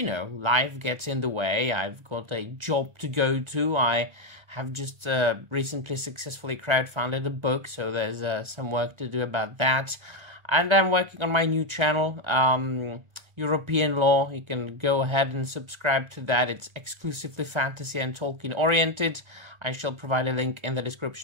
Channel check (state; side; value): late; left; 1.4 ms